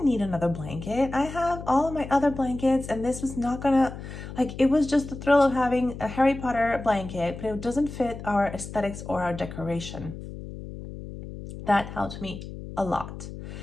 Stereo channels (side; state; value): left; noise; hum, 11 dB below the sound